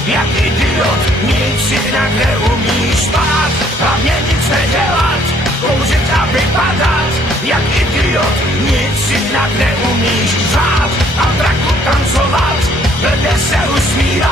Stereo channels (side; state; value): both; normal; correlation 0.63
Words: jak idiot, nic jinak neumíš spát, hlavně nic nedělat, kouřit a vypadat, jak idiot, nic jinak neumíš řád a draku tancovat, blbě se